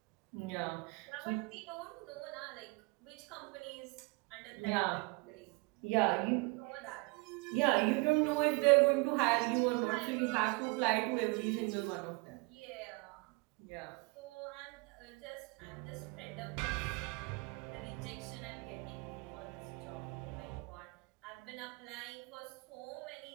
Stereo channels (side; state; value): left; quieter; 28.0 dB